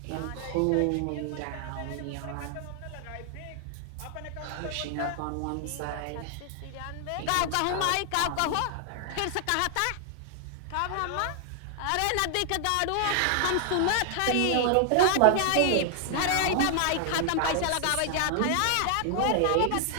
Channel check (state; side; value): different; both; correlation 0.00